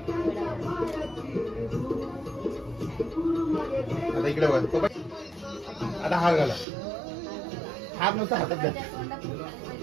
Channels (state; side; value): drops out; left; at 6.7 s